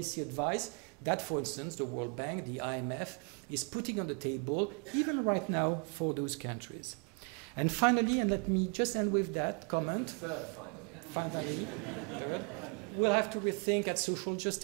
advice that, for instance, the World Bank, the IMF, is putting on the table, even right now, for those countries. And finally, and let me just end with that comment. Finally, we'll have to rethink at social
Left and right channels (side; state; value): left; quieter; 37.0 dB